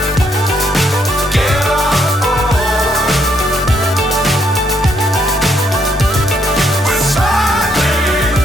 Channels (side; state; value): both; normal; correlation 0.73